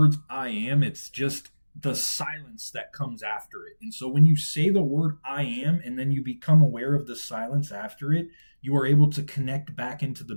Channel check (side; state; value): both; inverted; correlation -1.00